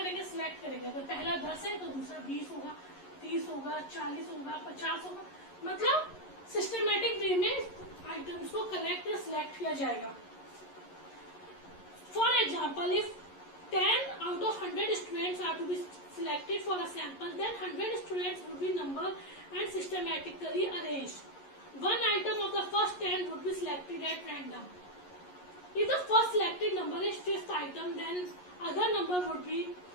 सिलेक्ट करेंगे. अगर पहला 10 है तो दूसरा 20 होगा, 30 होगा, 40 होगा, 50 होगा, मतलब सिस्टमैटिक वे में आइटम्स को कलेक्ट या सिलेक्ट किया जाएगा. For example, if 10 out of 100 students are to be selected for a sample, then 100 students would be numbered and systematically arranged. One item of the first 10 would be selected at random. If the first selected number is 5th item, then other number would be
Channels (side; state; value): right; late; 11 ms